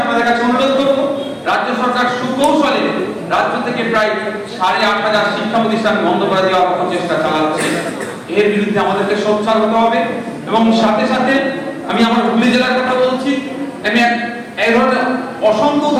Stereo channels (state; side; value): identical; both; correlation 1.00